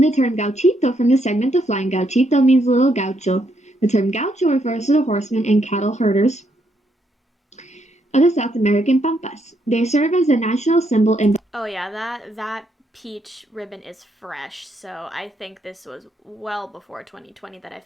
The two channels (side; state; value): both; normal; correlation 0.76